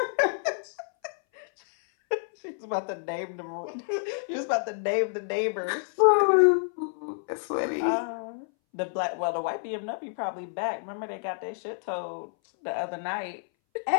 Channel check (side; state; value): right; silent; 59 dB below the other